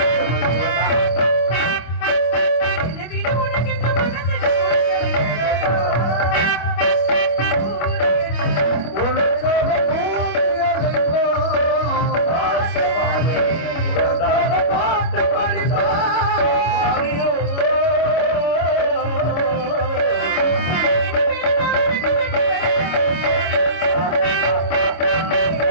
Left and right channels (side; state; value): right; late; 25 ms